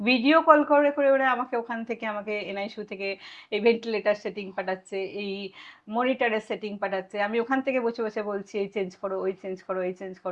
কল করে, করে ওরা আমাকে ওখান থেকে আমাকে এনআইসিইউ থেকে এই ভেন্টিলেটর সেটিং পাঠাচ্ছে, এই মনিটরের সেটিং পাঠাচ্ছে। আমি ওখান থেকে বসে, বসে বলছি এই চেঞ্জ করো, ওই চেঞ্জ করো, এই চেঞ্জ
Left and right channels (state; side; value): identical; both; correlation 1.00